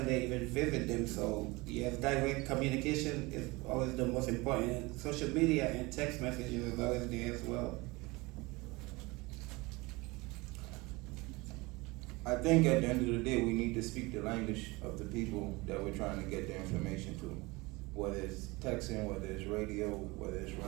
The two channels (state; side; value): quieter; left; 23.6 dB